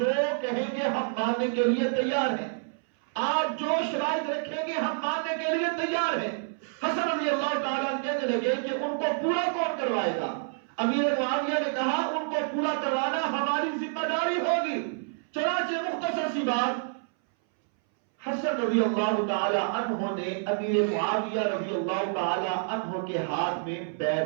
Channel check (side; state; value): left; silent; 59 dB below the other